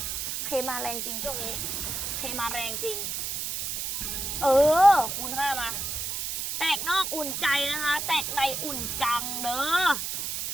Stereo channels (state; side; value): noise; right; hiss, 3 dB below the sound